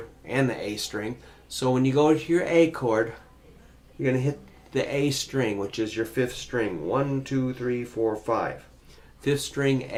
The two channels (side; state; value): both; identical; correlation 1.00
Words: and the A string. So when you go to your A chord, you're going to hit the A string, which is your 5th string. 1, 2, 3, 4, 5. 5th string